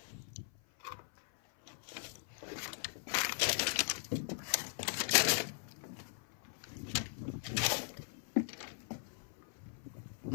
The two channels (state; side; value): silent; right; 51 dB below the other